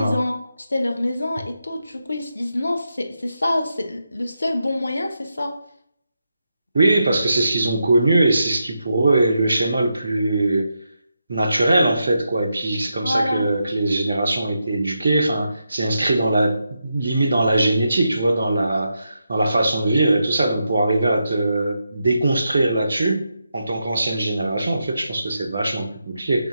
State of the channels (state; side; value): inverted; both; correlation -0.85